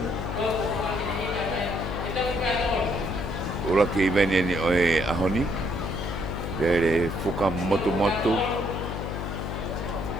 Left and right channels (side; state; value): left; noise; hum, 4 dB below the sound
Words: Ura ki veni ni oe ahoni. Dere fuka motu.